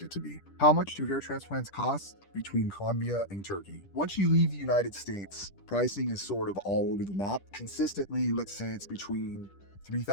it to be. How much do hair transplants cost between Colombia and Turkey? Once you leave the United States, pricing is sort of all over the map. Consistently, let's say it's between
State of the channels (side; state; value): right; late; 10 ms